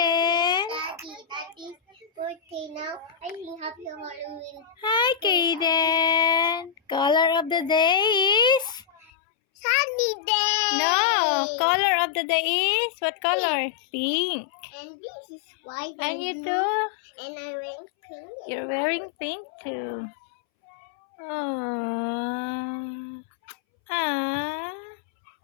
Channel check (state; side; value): drops out; right; at 9.1 s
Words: Daddy's birthday now. I think happy Halloween. Hi, Kaden. Color of the day is? Sunny day. No. Color of the day is? What color? Pink. And this is white. And you blue. too? And I wearing pink. You're wearing pink too. Aww. Ah.